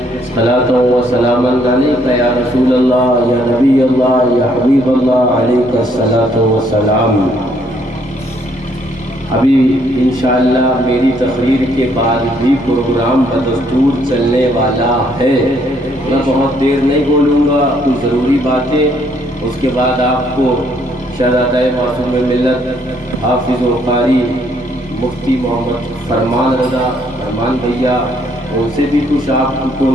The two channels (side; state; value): both; normal; correlation 0.68